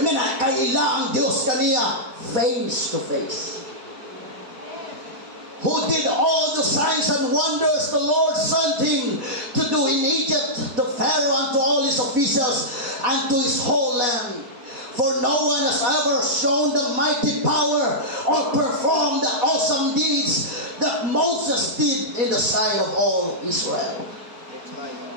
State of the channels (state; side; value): late; left; 4.6 ms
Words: nga nakaila ang Diyos kaniya face to face. Who did all the signs and wonders the Lord sent him to do in Egypt, to Pharaoh and to all his officials and to his whole land. For no one has ever shown the mighty power or performed the awesome deeds that Moses did in the sight of all Israel.